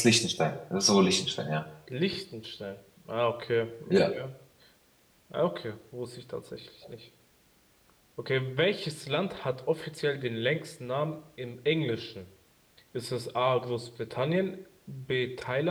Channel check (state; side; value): identical; both; correlation 1.00